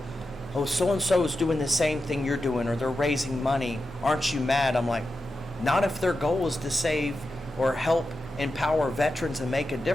oh, so-and-so is doing the same thing you're doing, or they're raising money. Aren't you mad? I'm like, not if their goal is to save or help empower veterans and make a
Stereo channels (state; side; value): normal; both; correlation 0.90